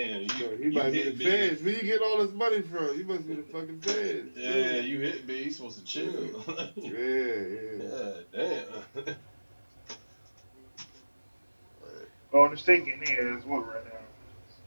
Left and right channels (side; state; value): both; inverted; correlation -1.00